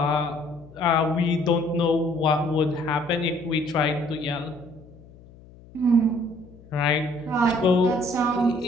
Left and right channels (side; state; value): left; noise; hum, 22 dB below the sound